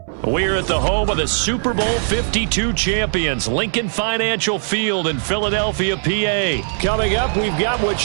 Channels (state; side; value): silent; left; 62 dB below the other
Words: We're at the home of the Super Bowl 52 champions, Lincoln Financial Field in Philadelphia, PA. Coming up, we've got what